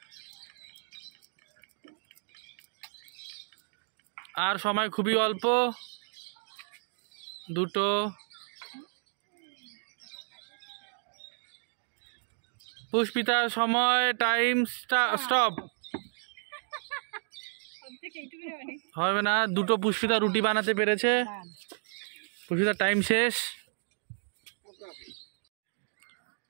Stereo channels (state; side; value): silent; left; digital silence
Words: আর সময় খুবই অল্প। দুটো। পুষ্পিতার সময়, টাইম স্টপ। হবে না, দুটো পুষ্পিতা রুটি বানাতে পেরেছে। পুষ্পিতার টাইম শেষ।